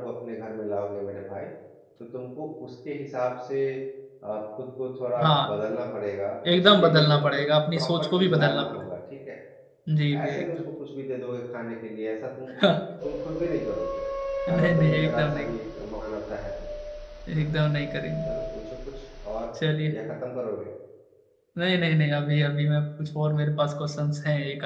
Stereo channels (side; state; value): both; identical; correlation 1.00